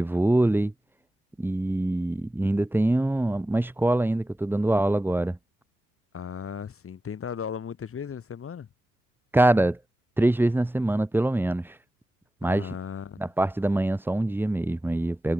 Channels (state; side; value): normal; both; correlation 0.94